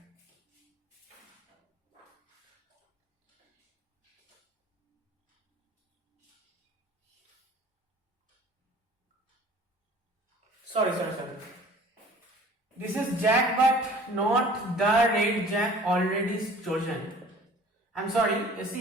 Sorry. This is jack but not the red jack already chosen. I'm sorry, you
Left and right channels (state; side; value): normal; both; correlation 0.49